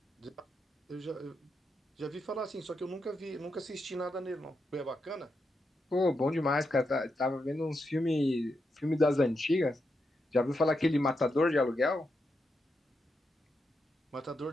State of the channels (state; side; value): normal; both; correlation 0.84